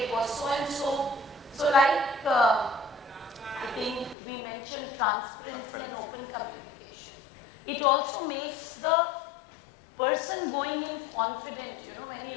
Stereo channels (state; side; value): drops out; right; at 4.2 s